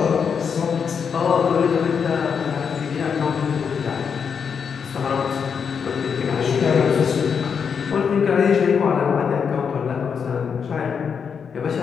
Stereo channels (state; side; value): quieter; right; 6.6 dB